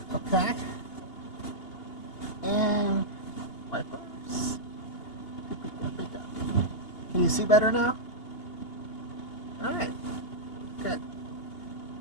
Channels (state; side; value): late; right; 2.8 ms